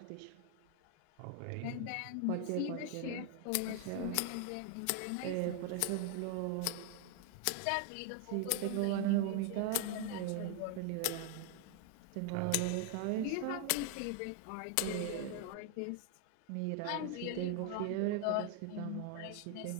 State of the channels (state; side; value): different; both; correlation 0.00